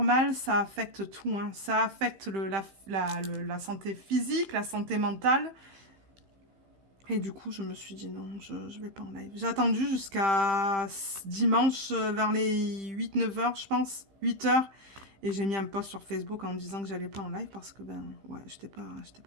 mal, ça affecte tout. Hein. Ça affecte la santé physique, la santé mentale. Et du coup, je me suis dit non, je vais pas en live. J'ai attendu jusqu'à dimanche vers les 8-9 heures, je pense. 8 heures. Et j'ai mis un post sur Facebook en me disant que j'allais pas en live parce que, ben, ouais, j'étais pas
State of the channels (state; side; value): late; left; 15 ms